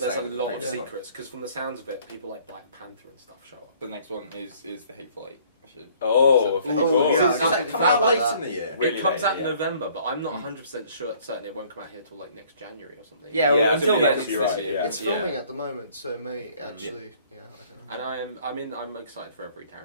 a was saying lot with of the secrets. Because from the sounds of it, people like Black Panther and stuff show up. The next one is the Hateful Eight. Oh, Oh, yeah, Does that come out late in the year? Really it comes late, out in yeah. November, but I'm not 100% certain it won't come out here till like next January or something. Yeah, Yeah, until I then, think it's you're this right, year. yeah. It's filming at the moment, so it may actually. Yeah, I don't know. And I'm excited for every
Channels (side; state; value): both; inverted; correlation -0.58